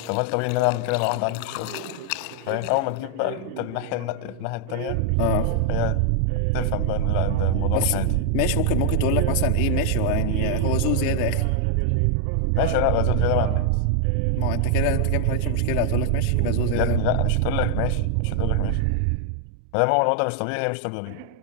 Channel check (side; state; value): both; different; correlation 0.00